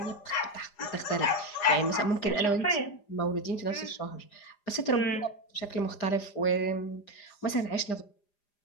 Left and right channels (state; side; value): late; right; 4.9 ms